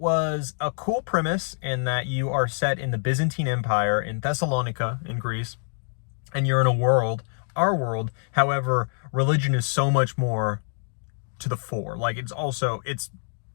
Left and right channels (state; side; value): silent; right; digital silence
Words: a cool premise in that you are set in the Byzantine Empire in Thessalonica in Greece, and you're in a world our world. However, religion is so much more to the fore. Like, it's